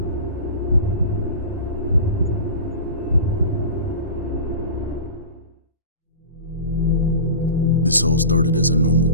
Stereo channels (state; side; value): inverted; both; correlation -0.34